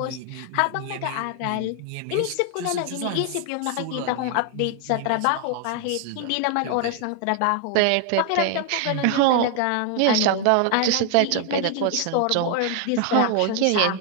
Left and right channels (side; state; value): both; different; correlation 0.00